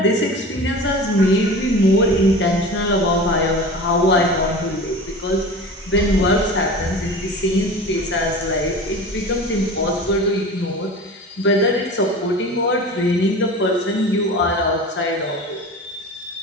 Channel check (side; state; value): both; normal; correlation 0.35